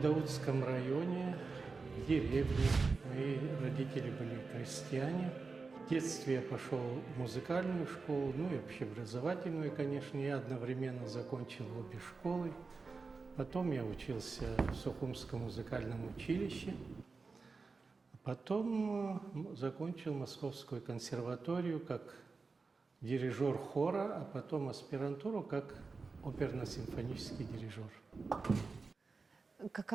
районе, в деревне. Мои родители были крестьяне. В детстве я пошел в музыкальную школу, ну и общеобразовательную, конечно. Я одновременно закончил обе школы. Потом я учился в Сухумском музыкальном училище. Потом закончил Московскую консерваторию как дирижер хора, а потом аспирантуру как оперно-симфонический дирижер.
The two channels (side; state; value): left; quieter; 4.3 dB